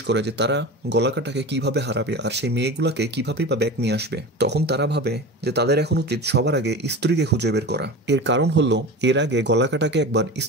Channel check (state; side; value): normal; both; correlation 0.30